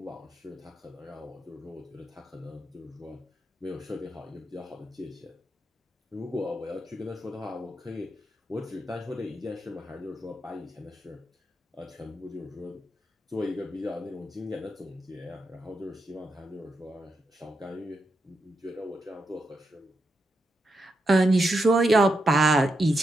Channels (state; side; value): normal; both; correlation 0.84